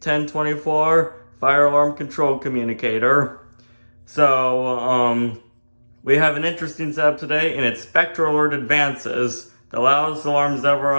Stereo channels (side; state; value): both; inverted; correlation -1.00